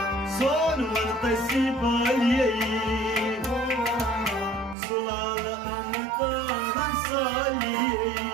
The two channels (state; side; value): drops out; left; at 4.8 s